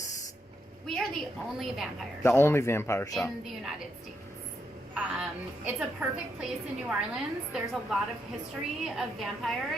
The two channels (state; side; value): normal; both; correlation 0.80